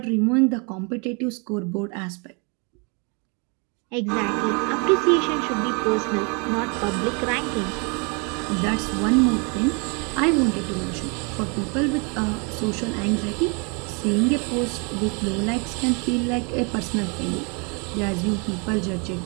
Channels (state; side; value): quieter; left; 33.5 dB